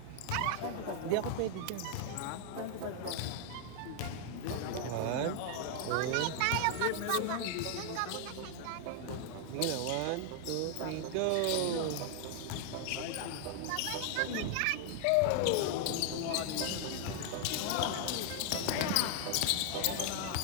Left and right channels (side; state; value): both; different; correlation 0.00